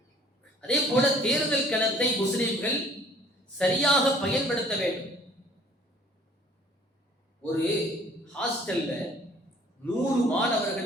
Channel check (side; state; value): both; normal; correlation 0.55